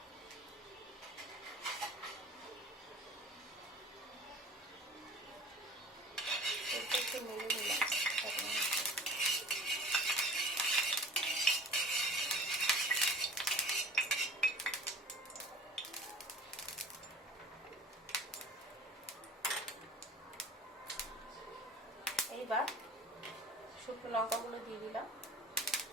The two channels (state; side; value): normal; both; correlation 0.43